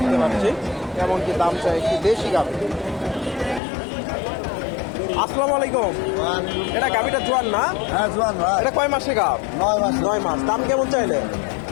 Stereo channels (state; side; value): drops out; right; at 3.6 s